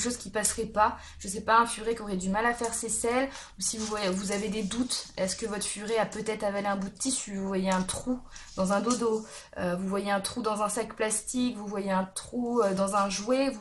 qui passerait pas. Je sais pas, un furet qui aurait du mal à faire ses selles. Ou si vous avez des doutes, est-ce que votre furet a peut-être avalé un bout de tissu? Vous voyez un trou dans un dodo, vous voyez un trou dans un sac plastique, vous voyez un trou dans un jouet,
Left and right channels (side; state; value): both; identical; correlation 1.00